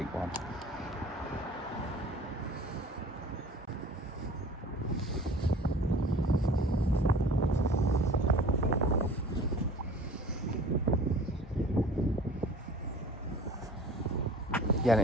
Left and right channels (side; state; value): both; normal; correlation 0.45